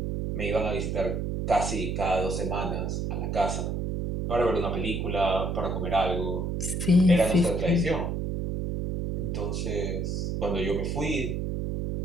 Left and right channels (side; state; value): right; noise; hum, 1 dB below the sound